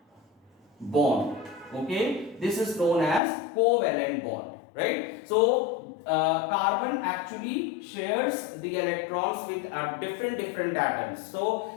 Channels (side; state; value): right; drops out; at 3.2 s